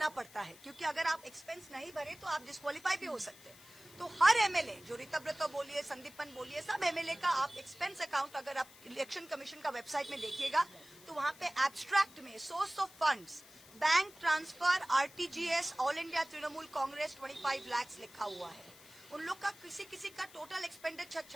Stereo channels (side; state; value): left; noise; hiss, 21 dB below the sound